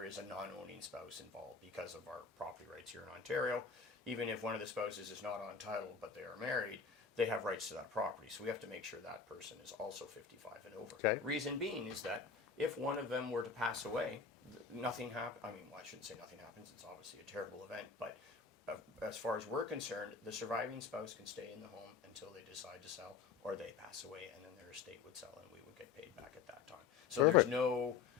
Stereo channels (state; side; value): quieter; right; 5.7 dB